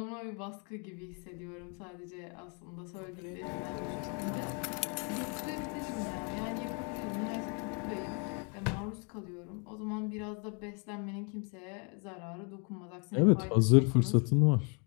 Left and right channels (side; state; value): right; quieter; 36.4 dB